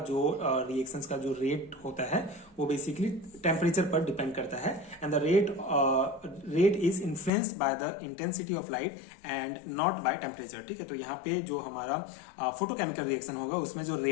जो रिएक्शंस का जो रेट होता है वो बेसिकली टेम्परेचर पर डिपेंड करता है। And the rate is influenced by the intensity of light and not by temperature, ठीक है। तो यहाँ पे जो हमारा फोटोकेमिकल रिएक्शन होगा उसमें जो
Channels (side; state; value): right; drops out; at 7.3 s